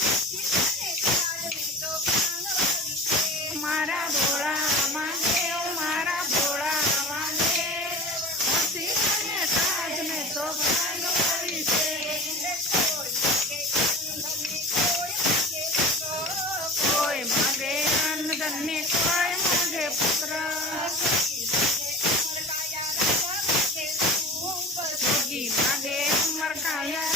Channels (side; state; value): both; normal; correlation 0.35